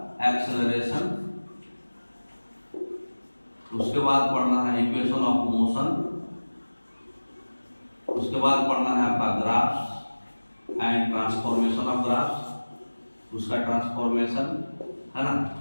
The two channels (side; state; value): both; inverted; correlation -1.00